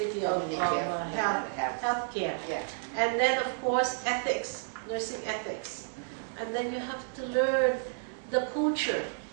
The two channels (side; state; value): left; silent; digital silence